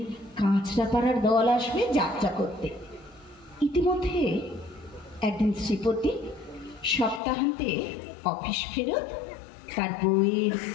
কাঁচরাপাড়ার দল আসবে যাত্রা করতে। ইতিমধ্যে একদিন শ্রীপতি সপ্তাহান্তে অফিস ফেরত তার বউয়ের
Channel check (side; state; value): right; drops out; at 7.2 s